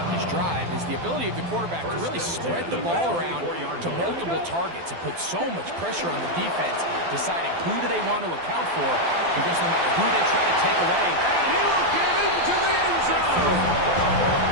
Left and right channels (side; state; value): left; late; 12 ms